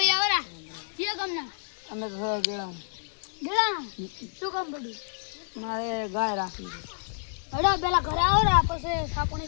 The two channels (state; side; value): silent; right; digital silence